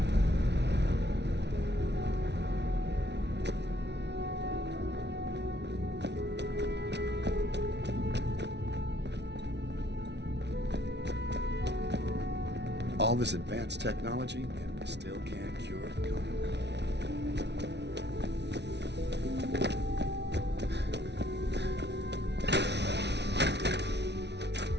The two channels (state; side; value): late; left; 0.50 ms